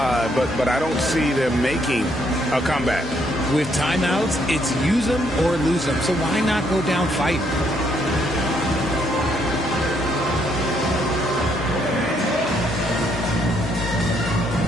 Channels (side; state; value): both; normal; correlation 0.72